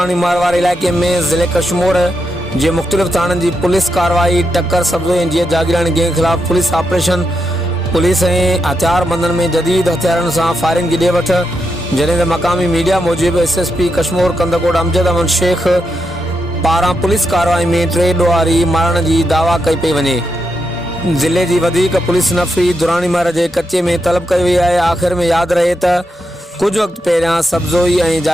मारवाड़ इलाइक़े में ज़िले कश्मीर जे मुख़्तलिफ़ थाननि की पुलिस कार्रवाई टक्कर सब्ज़ो ऐं जीअं जागीरानी गैंग खिलाफ़ पुलिस ऑपरेशन पुलिस ऐं हथियारबंदनि में जदीद हथियारनि सां फायरिंग की ॾे वठ, जॾहिं त मक़ामी मीडिया मूजिब SSP कश्मीर कंदकोट अमजद अहमद शेख पारां पुलिस कार्रवाई में 3 ॾोहारी मारण की दावा कई पई वञे। ज़िले की वधीक पुलिस नफ़री दुरानी मार के कच्चे में तलब कई वई आहे। आख़िर में याद रहे त कुछ वक्त पहिरियां सब्ज़ोई ऐं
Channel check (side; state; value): both; normal; correlation 0.84